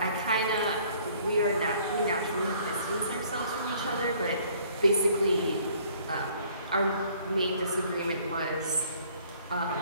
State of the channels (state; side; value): inverted; both; correlation -0.58